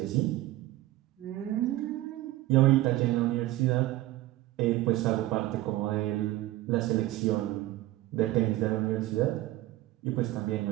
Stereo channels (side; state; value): left; quieter; 16.7 dB